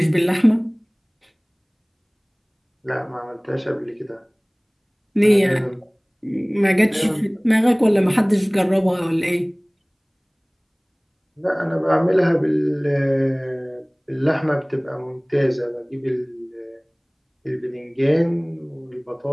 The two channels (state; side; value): identical; both; correlation 1.00